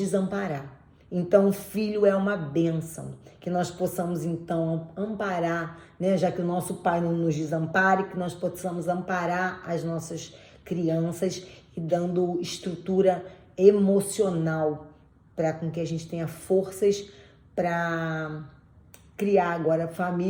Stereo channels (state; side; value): identical; both; correlation 1.00